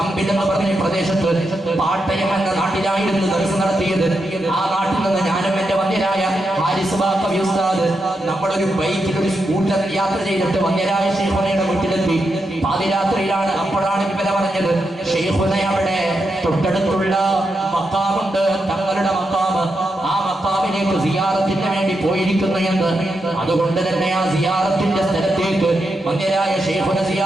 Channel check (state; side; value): normal; both; correlation 0.85